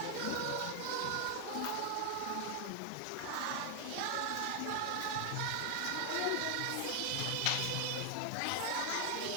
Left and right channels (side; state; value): both; different; correlation 0.00